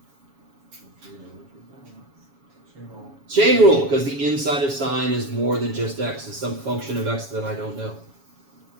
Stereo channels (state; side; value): late; left; 7.2 ms